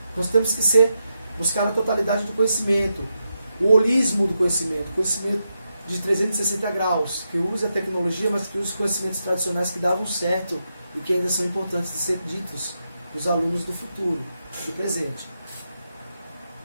Nós temos que buscar a totalidade do conhecimento, o holismo do conhecimento, conhecimento de 360 graus, que use a tecnologia, mas que use os conhecimentos tradicionais que davam certo e que ainda são importantes de ser ditos para os alunos do futuro, do presente.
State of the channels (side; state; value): both; inverted; correlation -0.86